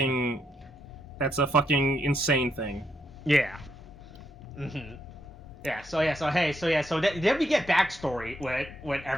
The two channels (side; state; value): both; normal; correlation 0.79